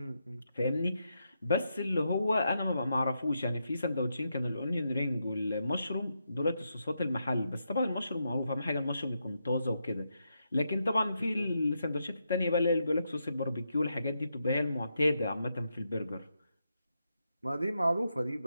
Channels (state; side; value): inverted; both; correlation -0.83